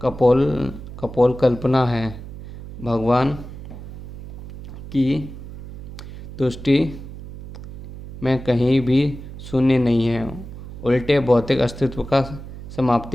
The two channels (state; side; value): noise; right; hum, 12 dB below the sound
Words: कल्पना है। भगवान की तुष्टि में कहीं भी शून्य नहीं है। उल्टे भौतिक अस्तित्व का